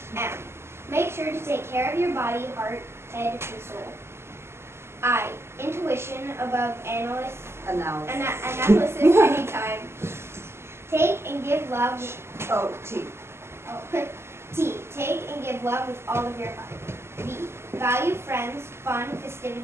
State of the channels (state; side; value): late; left; 0.12 ms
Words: M. Make sure to take care of your body, heart, head, and soul. I. Intuition above analysis anytime. Take and give love. T. T. Take and give love with all of your heart. B. Value friends, fun,